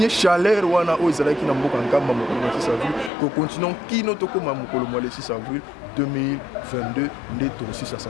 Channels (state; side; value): drops out; right; at 3.1 s